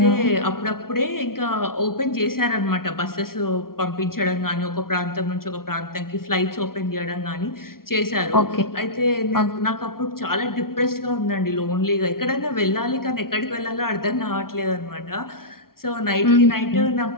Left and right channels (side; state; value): right; late; 0.93 ms